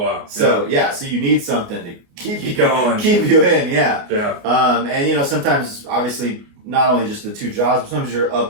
So so you need something to keep you going, keep you in. Yeah. Yeah. And sometimes obviously not only just the 2 jobs, but sometimes you're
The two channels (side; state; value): left; late; 29 ms